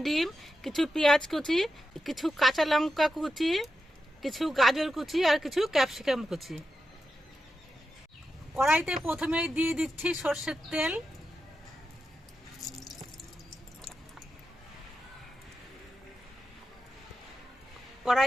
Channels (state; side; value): normal; both; correlation 0.88